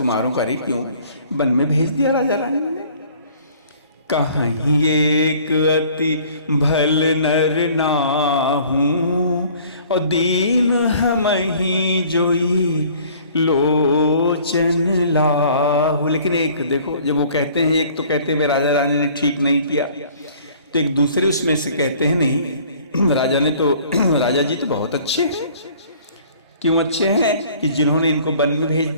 का रे क्यों वन में भेज दिया राजा रानी ने। कहीं एक अति भल नर नाहूं, और दीन हम ही जोई लोचन लाहू। लेकिन एक देखो, जब वो कहते हैं, एक तो कहते हैं राजा रानी ने ठीक नहीं किया, तो एक दूसरे उसमें से कहते हैं नहीं राजा ने तो राजा जी तो बहुत अच्छे हैं। क्यों अच्छे हैं? कि जिन्होंने इनको वन में भेज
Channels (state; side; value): inverted; both; correlation -0.53